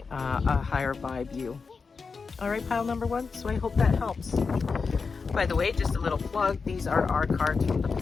a higher vibe you. All right, pile number one. So I hope that helps. By the way, just a little plug. These are our cards from the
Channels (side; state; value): right; quieter; 4.9 dB